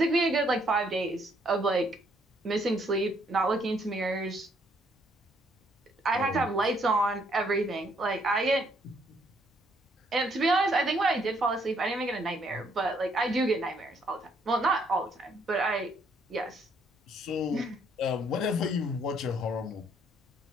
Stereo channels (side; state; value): both; normal; correlation 0.69